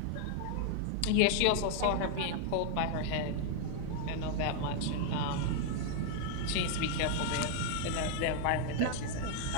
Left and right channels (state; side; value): different; both; correlation 0.00